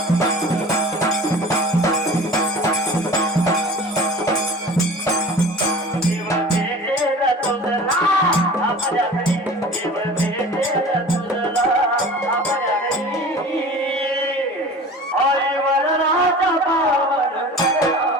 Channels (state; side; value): normal; both; correlation 0.40